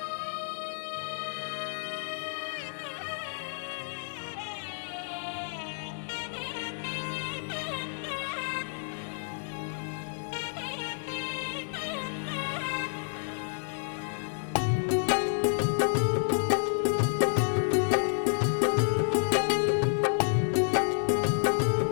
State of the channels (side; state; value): right; silent; digital silence